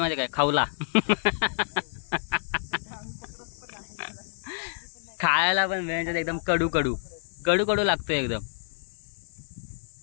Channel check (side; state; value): right; silent; digital silence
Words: काय? खावला. खायला पण वेळेच्यात एकदम कडू कडू कडू कडू लागतोय एकदम.